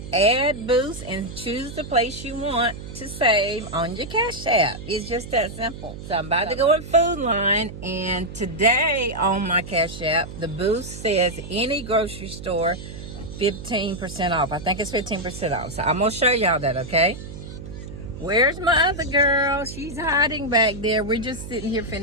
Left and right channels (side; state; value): right; noise; hum, 11 dB below the sound